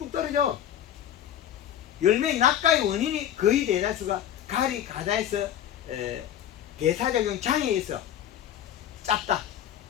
떨어져. 열매의 낙가의 원인이 거의 대다수가 가리 가다에서 대사작용 장애에서 짭다,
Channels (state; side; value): quieter; right; 10.7 dB